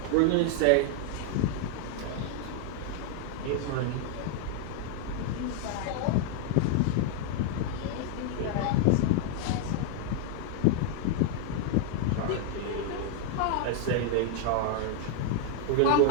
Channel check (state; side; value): different; both; correlation 0.00